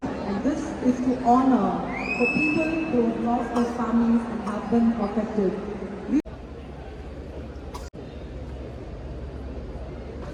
And this is to honor the people who have lost their families and have been affected.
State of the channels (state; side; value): identical; both; correlation 1.00